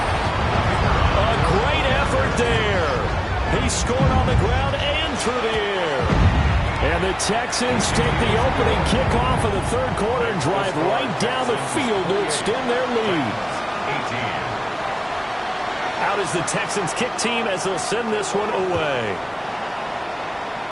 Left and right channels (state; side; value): identical; both; correlation 1.00